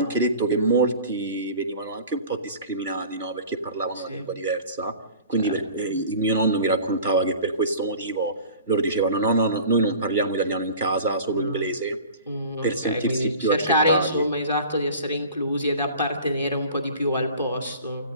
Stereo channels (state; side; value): inverted; both; correlation -0.42